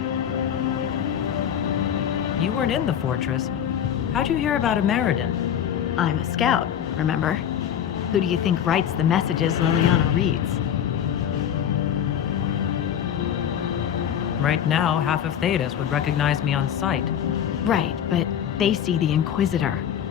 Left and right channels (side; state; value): right; quieter; 9.3 dB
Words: You weren't in the fortress. How'd you hear about a Meriden? I'm a scout, remember? Who do you think writes the messages Liliana reads? Right now, half of Thedas would recognize me on sight. Right, but they see the Inquisitor,